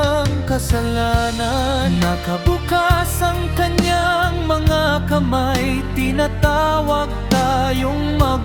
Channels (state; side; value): identical; both; correlation 1.00